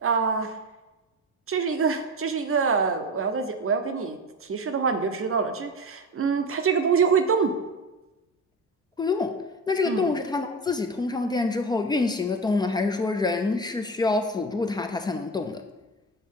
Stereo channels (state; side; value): normal; both; correlation 0.24